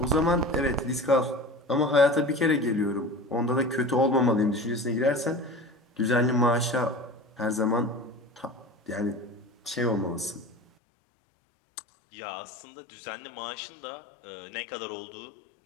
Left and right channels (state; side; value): drops out; right; at 10.6 s